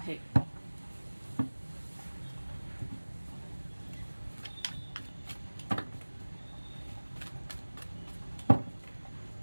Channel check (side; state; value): both; inverted; correlation -1.00